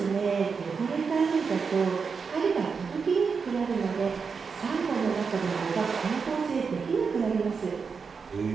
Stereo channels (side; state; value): left; quieter; 5.5 dB